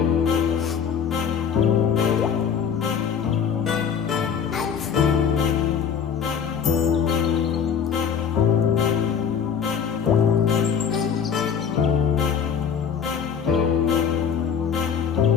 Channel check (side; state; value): right; quieter; 7.3 dB